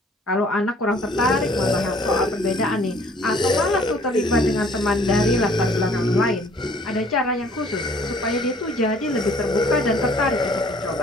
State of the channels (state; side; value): normal; both; correlation 0.57